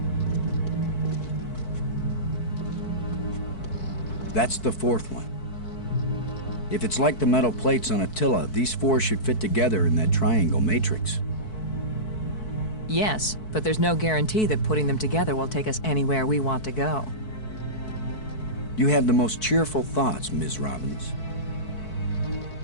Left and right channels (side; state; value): right; late; 4.6 ms